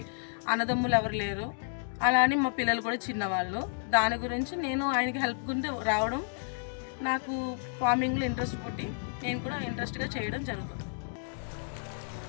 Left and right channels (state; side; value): silent; right; digital silence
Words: అన్నదమ్ములు ఎవరు లేరు, అలా అని మా పిల్లలు కూడా చిన్నవాళ్ళు. దాని గురించి నేను ఆయనకి హెల్ప్ గుంటే రావడం, నాకు ఫార్మింగ్లో ఇంట్రెస్ట్ పుట్టి నేను కూడా ఇంట్రెస్ట్గా చేయడం జరుగుతుంది.